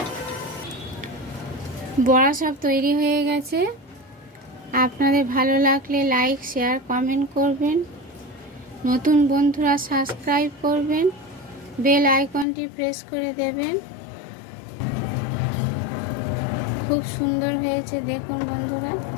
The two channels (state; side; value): drops out; right; at 12.5 s